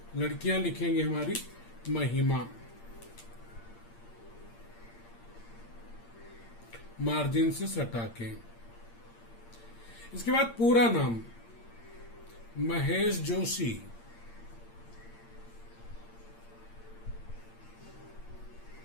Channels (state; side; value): late; right; 8.7 ms